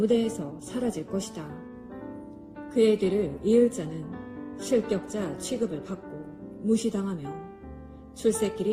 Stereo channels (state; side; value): identical; both; correlation 1.00